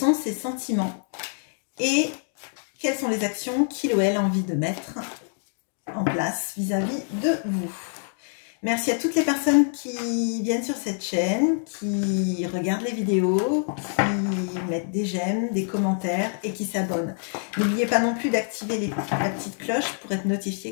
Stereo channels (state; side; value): silent; right; 61 dB below the other